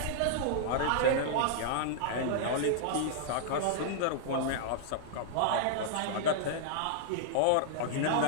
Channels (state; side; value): different; both; correlation -0.01